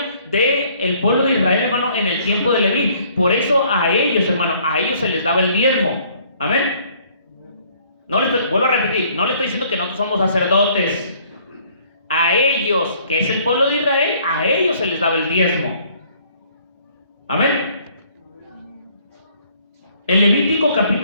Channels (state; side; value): inverted; both; correlation -0.61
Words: del pueblo de Israel, hermano, en el tiempo de Leví. Por eso a ellos, hermano, a ellos se les daba el diezmo. Amén. Vuelvo a repetir, no le estoy diciendo que nosotros somos sacerdotes. A ellos, que es el pueblo de Israel, a ellos se les daba el diezmo. Amén. En Levítico